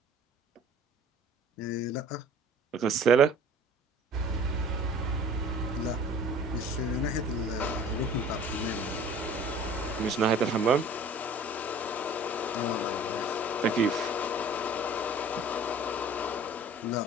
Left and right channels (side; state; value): both; normal; correlation 0.48